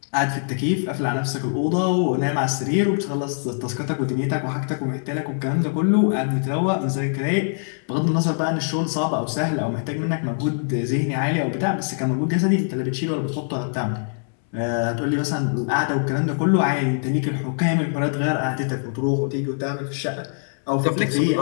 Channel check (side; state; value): right; silent; 63 dB below the other